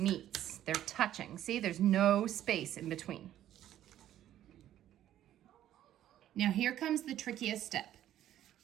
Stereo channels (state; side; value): quieter; left; 12.1 dB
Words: they're touching. See, there's no space in between. Now here comes the trickiest step.